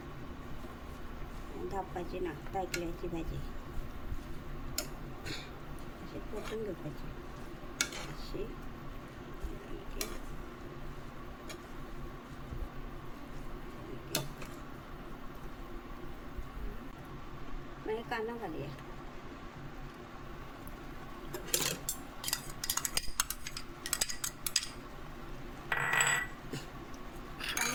धापपाची ना तायकिळ्याची भाजी. अशी परतून घेवपाची अशी. मागीर कांदो घालया.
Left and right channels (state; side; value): identical; both; correlation 1.00